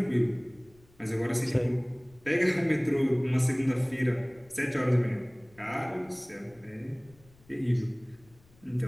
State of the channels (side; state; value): left; noise; rumble, 28 dB below the sound